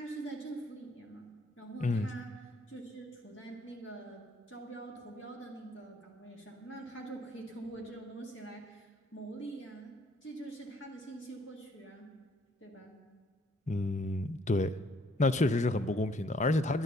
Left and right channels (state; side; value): normal; both; correlation 0.64